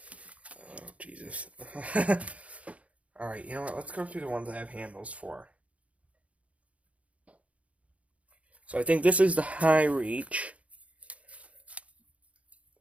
Jesus. Alright, you know what? Let's go through the ones I have handles for. So I think this is the high reach.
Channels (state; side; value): late; left; 0.065 ms